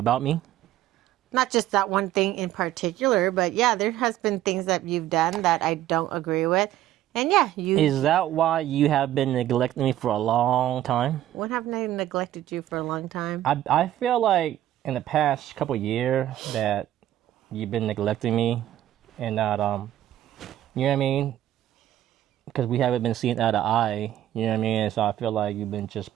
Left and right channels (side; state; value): left; quieter; 12.9 dB